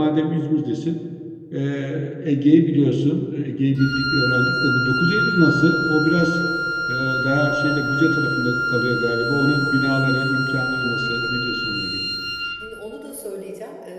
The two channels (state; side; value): identical; both; correlation 1.00